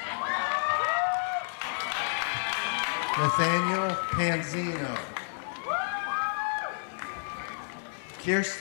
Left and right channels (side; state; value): right; silent; digital silence